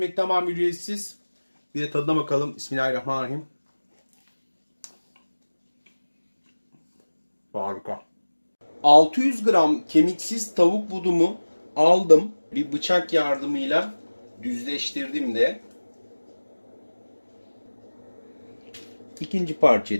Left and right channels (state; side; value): inverted; both; correlation -1.00